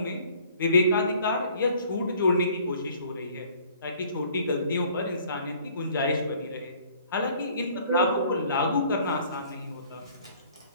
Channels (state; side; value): inverted; both; correlation -0.56